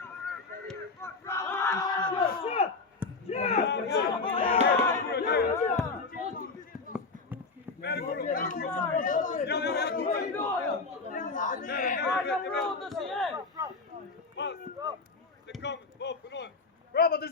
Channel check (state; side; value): quieter; right; 4.1 dB